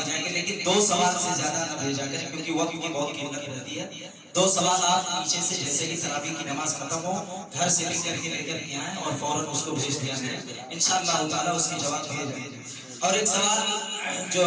جائیں گے، لیکن 2 سوال سے زیادہ نہ بھیجا کریں کیونکہ وقت کی بہت قیمت رہتی ہے۔ 2 سوال آپ پیچھے سے جیسے ہی تراویح کی نماز ختم ہو گھر سے لکھ کر کے لے کر کے آئیں اور فوراً اس کو بھیج دیا جائے، انشاءاللہ تعالیٰ اس کے جواب دیے جائیں گے۔ اور ایک سوال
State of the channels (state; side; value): identical; both; correlation 1.00